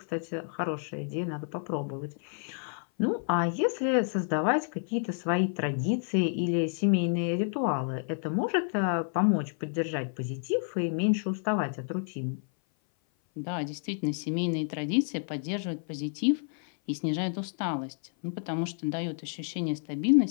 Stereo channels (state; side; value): silent; right; 56 dB below the other